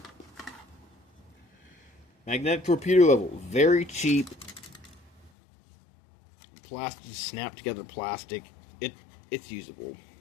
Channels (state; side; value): drops out; right; at 5.3 s